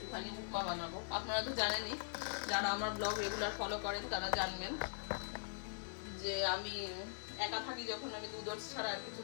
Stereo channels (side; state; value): right; silent; digital silence